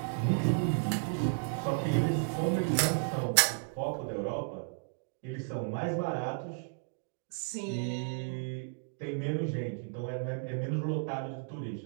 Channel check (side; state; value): left; silent; digital silence